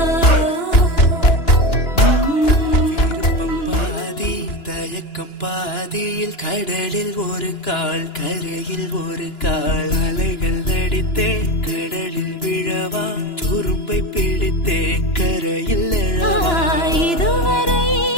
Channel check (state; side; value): late; right; 2.9 ms